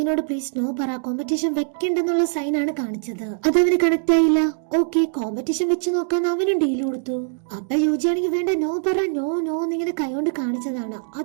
പ്ലീസ് നോ പറ, കോമ്പറ്റീഷൻ വെക്കണ്ടെന്നുള്ള സൈൻ ആണ് കാണിച്ചത്. അതവന് കണക്ട് ആയില്ല. ഓക്കെ, കോമ്പറ്റീഷൻ വെച്ച് നോക്കാൻ അവനും ഡീൽ കൊടുത്തു. അപ്പൊ യോജിയാണെങ്കിൽ വേണ്ട നോ പറ, നോ നോ എന്നിങ്ങനെ കൈകൊണ്ട് കാണിച്ചതാണ്.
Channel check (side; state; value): left; silent; digital silence